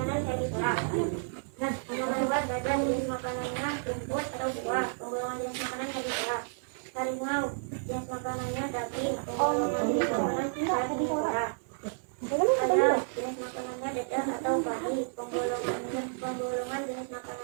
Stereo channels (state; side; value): silent; left; digital silence